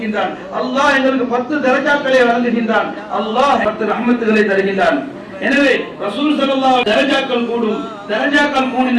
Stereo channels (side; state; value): both; identical; correlation 1.00